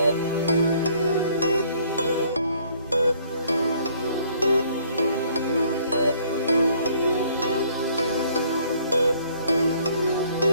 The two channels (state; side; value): inverted; both; correlation -0.61